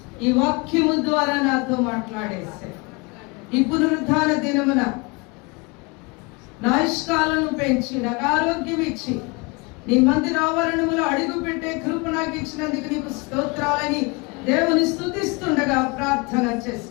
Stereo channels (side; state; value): right; quieter; 28.3 dB